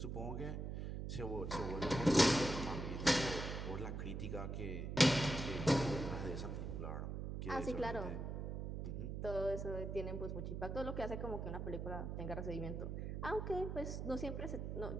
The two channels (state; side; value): noise; right; hum, 4 dB below the sound